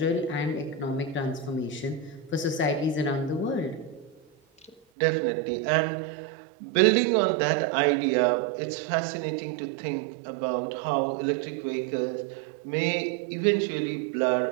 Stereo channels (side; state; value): left; drops out; at 4.8 s